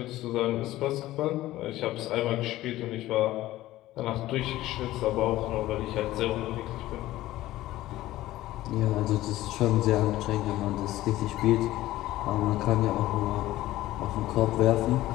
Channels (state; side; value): quieter; right; 15.8 dB